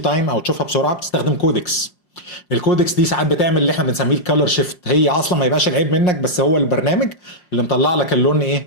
او تشوفها بسرعه، بتستخدم كودكس. الكودكس دي ساعات بتعمل اللي احنا بنسميه الكالر شيفت، هي اصلا ما يبقاش العيب منك، بس هو البرنامج اللي مطلع لك اللون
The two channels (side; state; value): right; late; 5.6 ms